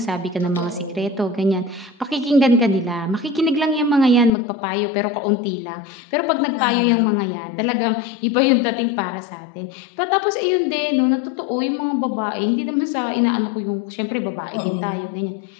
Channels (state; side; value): drops out; right; at 4.3 s